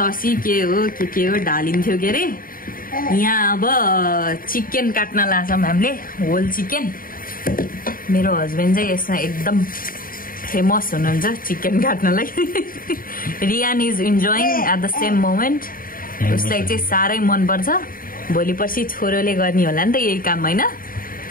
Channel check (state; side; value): late; right; 0.41 ms